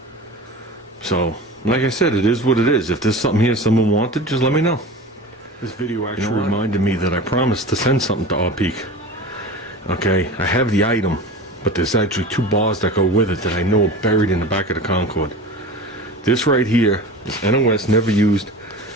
So, like I said, it is what it is. If there's something here someone wanted, just let me know. This video actually reminded me that I promised to send something to our Peak. Okay, I have the item, but there's actually 2 bars that go with it that I know are buried in the back of the Concorde. This right here is NOS, never used.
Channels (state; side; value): normal; both; correlation 0.33